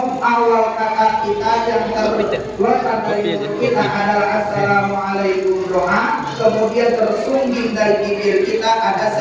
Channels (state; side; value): identical; both; correlation 1.00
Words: Awal kata kita yang terletak dari kita adalah assalamualaikum doa. Kemudian tersungging dari bibir kita ada